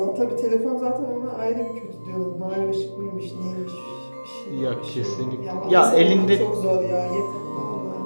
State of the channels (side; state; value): both; inverted; correlation -1.00